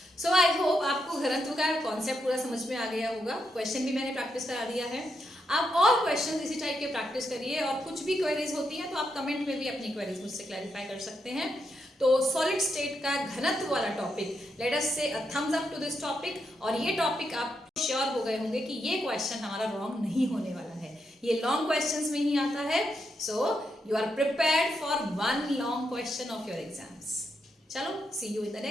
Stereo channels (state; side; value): normal; both; correlation 0.82